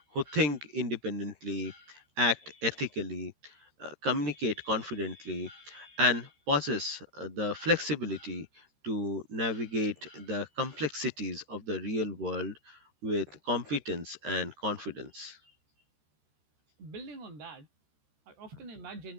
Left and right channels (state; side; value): late; left; 13 ms